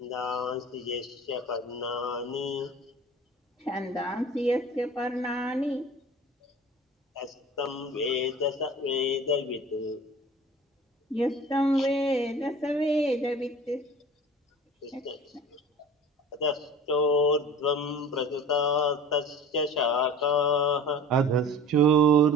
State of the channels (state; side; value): normal; both; correlation 0.40